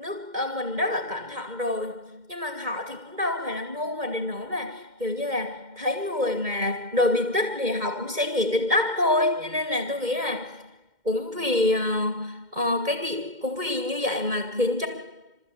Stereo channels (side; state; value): left; late; 2.1 ms